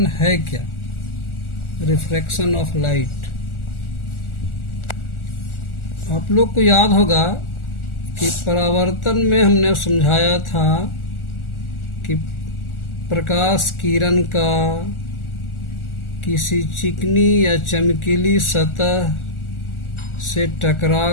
है क्या, रिफ्रैक्शन ऑफ लाइट। आप लोग को याद होगा कि परावर्तन में हमने समझाया था कि प्रकाश किरण का किसी चिकनी या चमकीली सतह से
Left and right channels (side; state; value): right; late; 1.4 ms